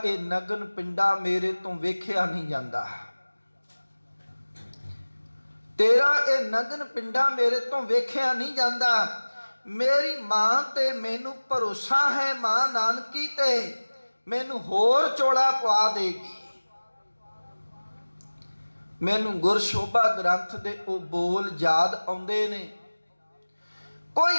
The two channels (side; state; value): both; inverted; correlation -1.00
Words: ਇਹ ਨਗਨ ਪਿੰਡਾ ਮੇਰੇ ਤੋਂ ਵੇਖਿਆ ਨਹੀਂ ਜਾਂਦਾ, ਤੇਰਾ ਇਹ ਨਗਨ ਪਿੰਡਾ ਮੇਰੇ ਤੋਂ ਵੇਖਿਆ ਨਹੀਂ ਜਾਂਦਾ। ਮੇਰੀ ਮਾਂ ਤੇ ਮੈਨੂੰ ਭਰੋਸਾ ਹੈ, ਮਾਂ ਨਾਨਕੀ ਤੇ ਮੈਨੂੰ ਹੋਰ ਚੋਲਾ ਪਵਾ ਦੇਗੀ। ਮੈਨੂੰ ਗੁਰਸ਼ੋਭਾ ਗ੍ਰੰਥ ਦੇ ਉਹ ਬੋਲ ਯਾਦ ਆਉਂਦੇ ਨੇ। ਕੋਈ